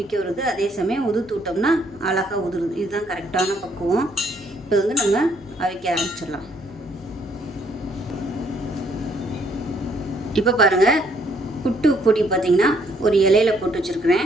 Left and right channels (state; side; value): normal; both; correlation 0.67